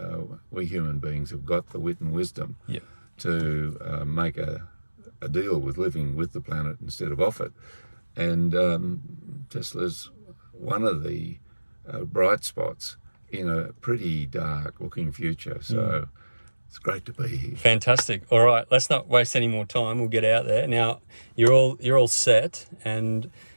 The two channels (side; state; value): both; inverted; correlation -1.00